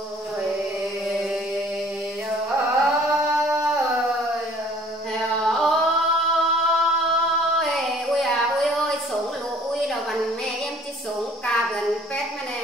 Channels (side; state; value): both; normal; correlation 0.55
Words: ôi sống lũ ui đâu bằng mẹ em chỉ sống cà gần pết mà nè